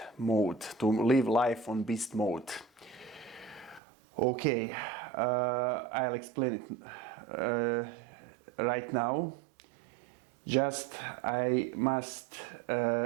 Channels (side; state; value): left; drops out; at 3.8 s